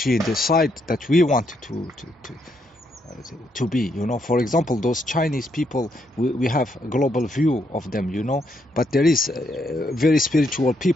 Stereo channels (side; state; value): both; normal; correlation 0.76